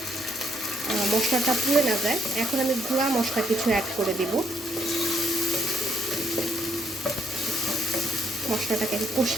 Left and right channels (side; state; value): both; normal; correlation 0.72